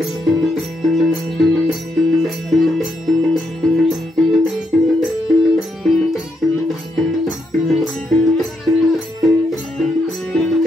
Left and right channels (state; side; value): normal; both; correlation 0.79